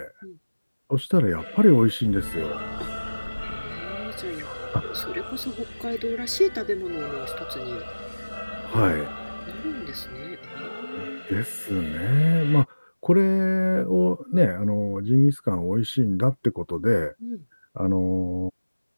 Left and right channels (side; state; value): both; inverted; correlation -1.00